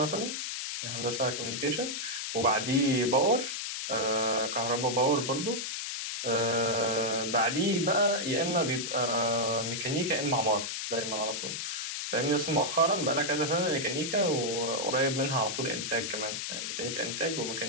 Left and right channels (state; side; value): noise; left; hiss, 4 dB below the sound